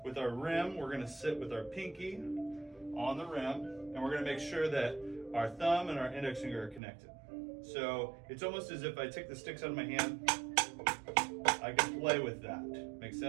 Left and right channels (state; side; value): drops out; left; at 6.8 s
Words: With our rim, we're gonna sit with our pinky on the rim, and we're gonna make sure that our thumb and our index finger are connected. So it's almost as if I take the sticks out of my hand, I can play with that. Make